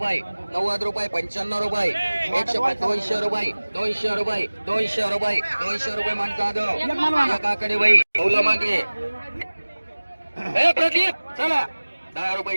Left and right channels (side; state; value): both; inverted; correlation -1.00